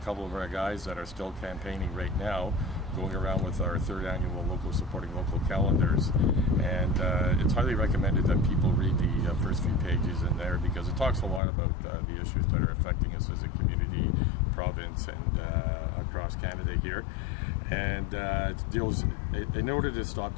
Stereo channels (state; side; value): drops out; right; at 11.4 s